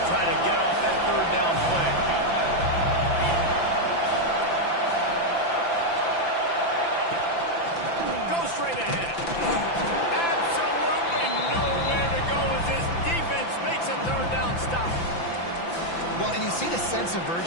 try to get off that 3rd down play. Straight ahead. Absolutely nowhere to go as this defense makes a 3rd down stop. Well, and you see the sense of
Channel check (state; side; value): late; right; 5.9 ms